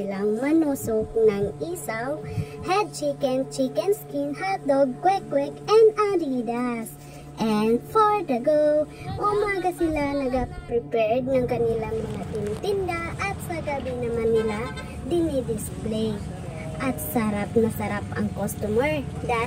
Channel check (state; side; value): identical; both; correlation 1.00